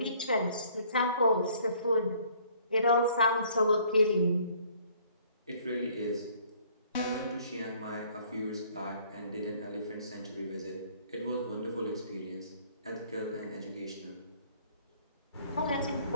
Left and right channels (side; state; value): both; inverted; correlation -0.59